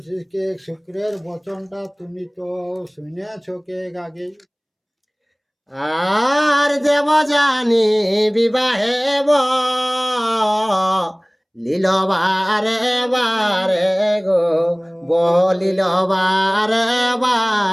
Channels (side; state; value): both; identical; correlation 1.00